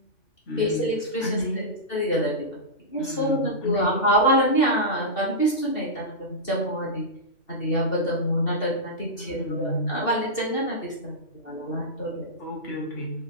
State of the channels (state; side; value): late; right; 2.7 ms